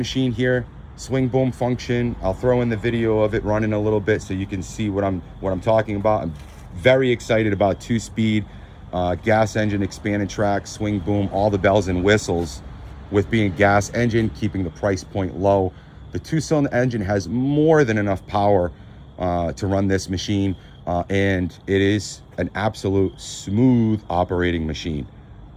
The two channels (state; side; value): identical; both; correlation 1.00